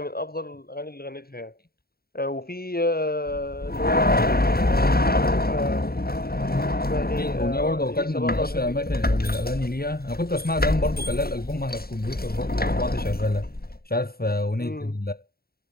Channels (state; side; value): late; right; 0.45 ms